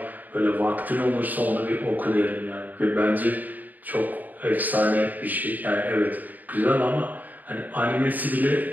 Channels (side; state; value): left; late; 0.083 ms